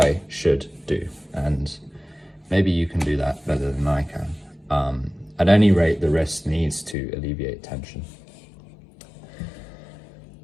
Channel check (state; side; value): drops out; right; at 7.0 s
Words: should do, and maybe you can do that better than I can. At any rate, the wrist needs to alleviate tension.